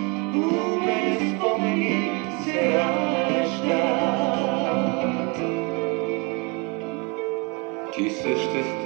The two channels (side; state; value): left; quieter; 30.6 dB